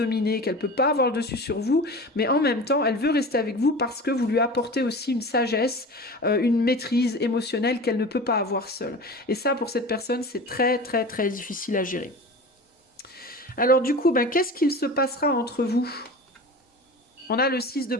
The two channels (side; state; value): both; normal; correlation 0.34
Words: qu'elle peut pas avoir le dessus sur vous, mais en même temps, elle veut rester avec vous parce que vous lui apportez aussi une sagesse, une maîtrise émotionnelle qu'elle ne peut pas avoir seule. Et ça, pour cette personne, c'est très, très, très difficile à gérer. Alors du coup, qu'est-ce qu'il se passera entre vous? On a le 6 de